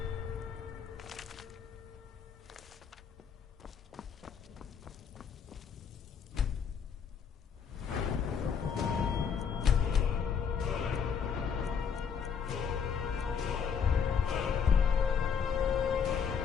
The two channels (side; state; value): right; quieter; 6.9 dB